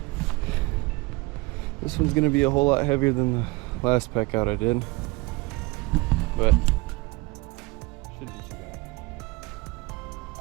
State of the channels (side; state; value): left; quieter; 23.8 dB